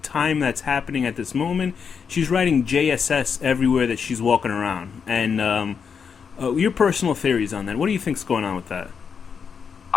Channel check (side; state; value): right; quieter; 6.4 dB